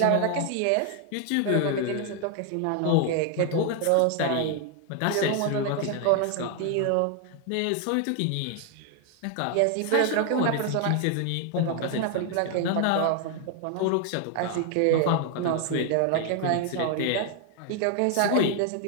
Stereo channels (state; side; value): different; both; correlation 0.00